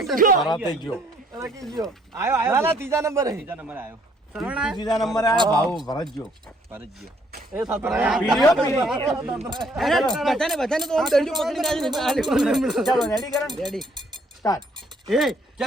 ત્રીજા નંબર આવ્યો ત્રીજા નંબર આયો ભાવ ભરત ગયો બધાને તો આમ દંડું પકડીને ચાલો રેડી કરો રેડી સ્ટાર્ટ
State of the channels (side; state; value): both; normal; correlation 0.65